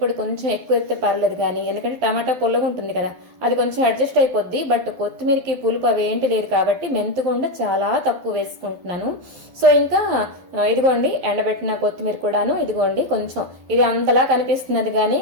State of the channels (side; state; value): left; late; 12 ms